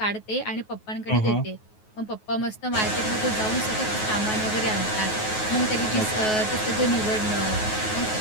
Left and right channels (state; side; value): late; right; 9.4 ms